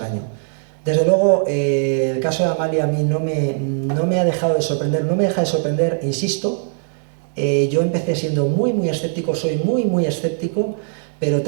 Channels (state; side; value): silent; left; 62 dB below the other